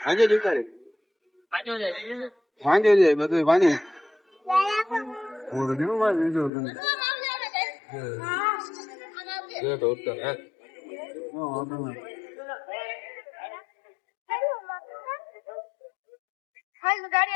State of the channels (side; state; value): right; drops out; at 6.5 s